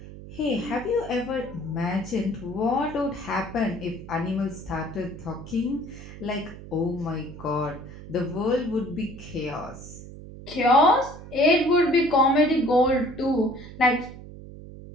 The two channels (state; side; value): noise; right; hum, 14 dB below the sound